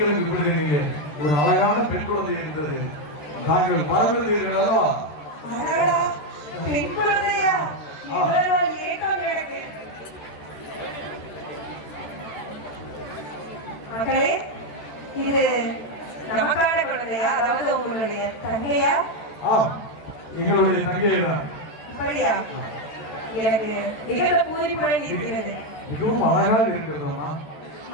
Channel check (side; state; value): right; late; 14 ms